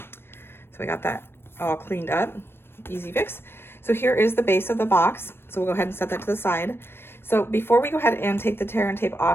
we got that all cleaned up, easy fix. So here is the base of the box. So we'll go ahead and set that to the side. So before we go ahead and take the tear and tape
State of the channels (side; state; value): right; late; 0.11 ms